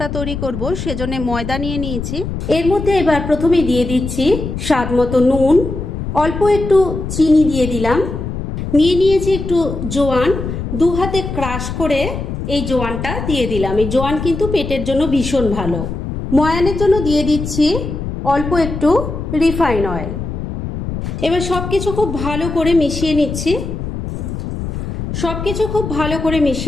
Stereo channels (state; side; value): noise; left; rumble, 6 dB below the sound